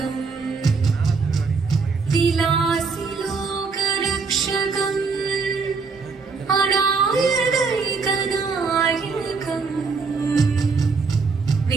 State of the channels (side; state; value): left; quieter; 4.7 dB